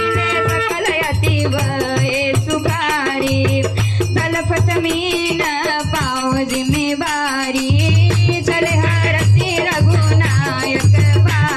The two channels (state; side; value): identical; both; correlation 1.00